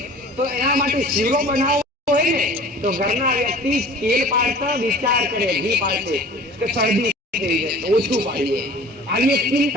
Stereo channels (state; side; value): normal; both; correlation 0.44